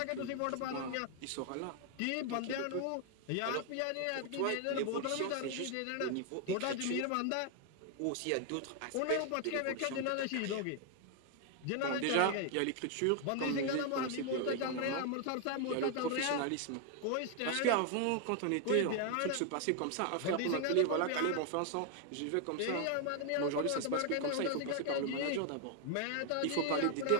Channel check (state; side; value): different; both; correlation 0.00